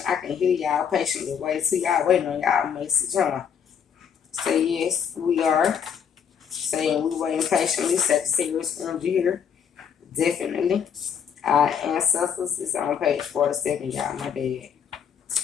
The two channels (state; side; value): quieter; right; 7.6 dB